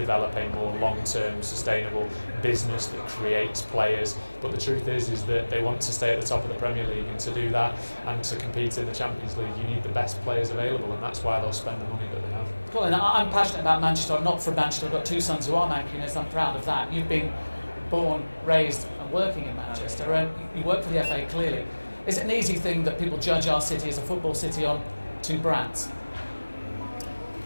a more long-term, sustainable business that creates players. But the truth is that they want to stay at the top of the Premier League, and to do that and to compete in the Champions League, you need the best players available, and that's why they'll spend the money that they have. Colin, I'm passionate about Manchester. I'm not from Manchester. I've got two sons who are Mancunians. I'm proud of that. You've been born, raised and working in Manchester, and you work for the FA clearly. Is it an easy thing that people judge our city as a football city on two brands?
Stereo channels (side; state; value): both; inverted; correlation -1.00